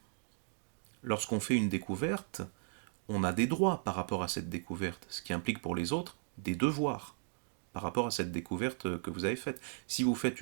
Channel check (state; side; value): silent; left; digital silence